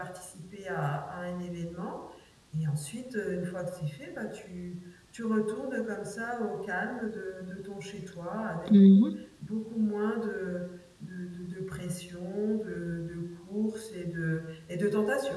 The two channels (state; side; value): identical; both; correlation 1.00